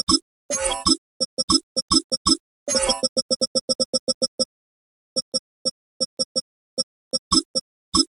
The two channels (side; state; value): left; quieter; 5.3 dB